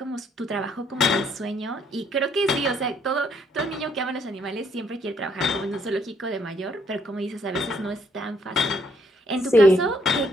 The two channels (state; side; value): normal; both; correlation 0.69